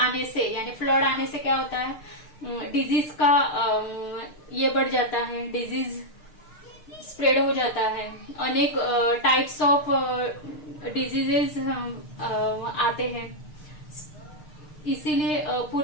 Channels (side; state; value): right; late; 6.6 ms